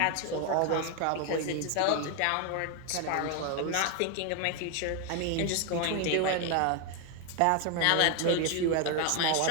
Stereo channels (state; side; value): different; both; correlation 0.01